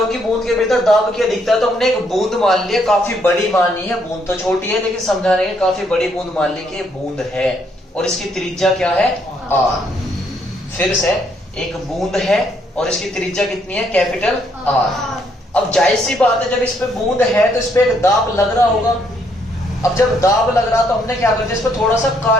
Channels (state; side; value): normal; both; correlation 0.71